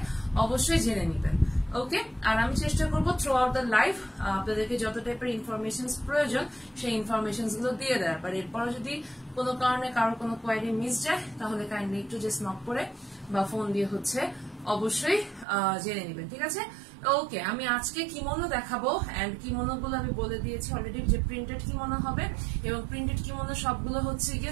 অবশ্যই জেনে নেবেন। ওকে, আর আমি চেষ্টা করবো থ্রু আউট দ্য লাইভ আপনাদেরকে যত টাইপের ইনফরমেশন প্রয়োজন সেই ইনফরমেশন গুলো দিয়ে দেওয়ার। আর এরপর যদি কোনো কারণে কারো কোনো কোয়ারি মিস যায়, তাহলে কাইন্ডলি একটু জাস্ট নক করে বা ফোন দিয়ে অবশ্যই জেনে নেবেন। ঠিক আছে, ওকে, আমি আজকে কিমোনো দেখাবো এন্ড কিমোনো গুলো আমি বলে দিয়েছি অলরেডি যে প্রিন্টেড কিমোনো হবে, এবং প্রিন্টেড কিমোনো সবগুলো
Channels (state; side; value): drops out; left; at 15.5 s